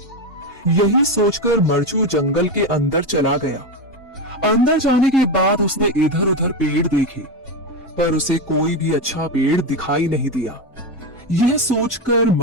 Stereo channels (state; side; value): normal; both; correlation 0.14